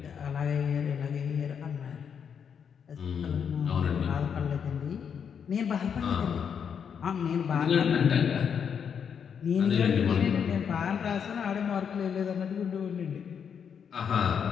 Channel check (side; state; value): right; quieter; 7.3 dB